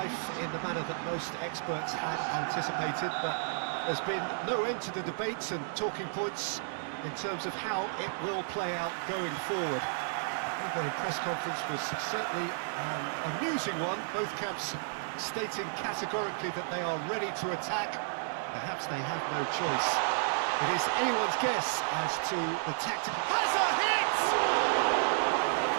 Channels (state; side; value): silent; left; digital silence